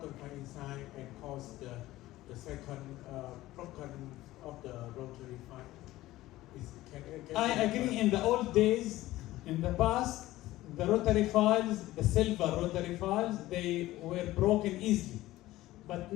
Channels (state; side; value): quieter; right; 16.5 dB